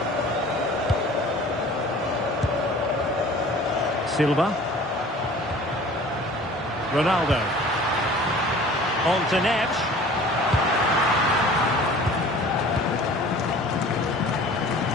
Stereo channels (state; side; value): normal; both; correlation 0.46